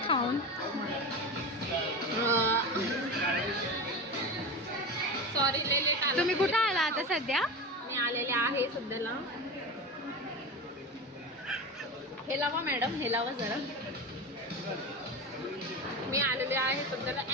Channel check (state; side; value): normal; both; correlation 0.25